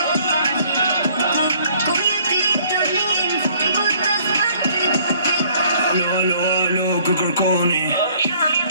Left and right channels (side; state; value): both; inverted; correlation -0.59